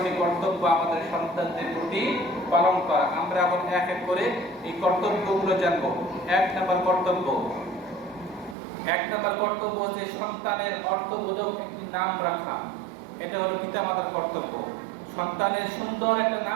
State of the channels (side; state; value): left; drops out; at 8.6 s